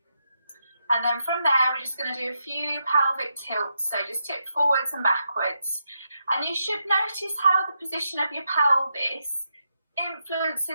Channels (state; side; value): inverted; both; correlation -0.83